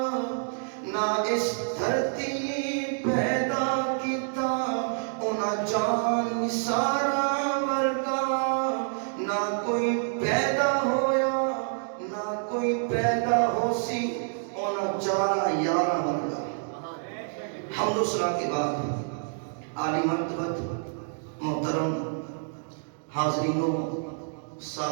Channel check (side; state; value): left; silent; digital silence